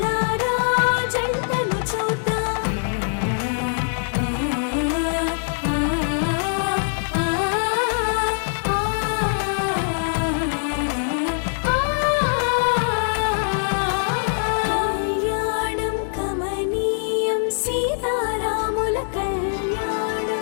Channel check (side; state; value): right; silent; digital silence